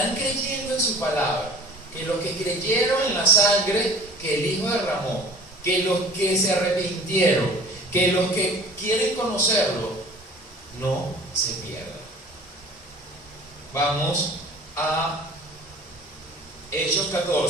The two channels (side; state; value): both; normal; correlation 0.46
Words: creyendo en su palabra, que los que creyeron en la sangre que el Hijo derramó, que los que se arrepintieron, que los que quieren conocerlo, no se pierdan. Vamos a Hechos